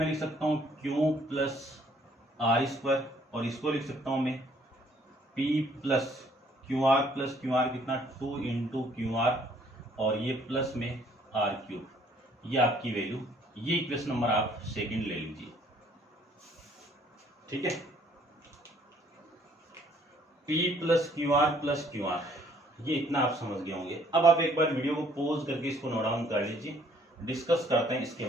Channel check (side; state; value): both; normal; correlation 0.62